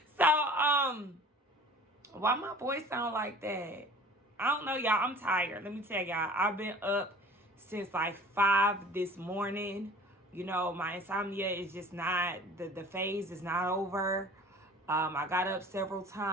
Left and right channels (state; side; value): normal; both; correlation 0.45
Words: So, why my voice sound like that? I don't know, y'all. I'm tired. Let me tell y'all. I've been up since like 5 this morning. My insomnia is just not, the phase is not over. I got up several